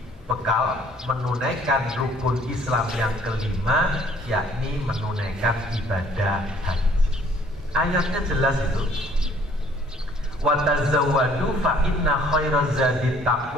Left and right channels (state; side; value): normal; both; correlation 0.59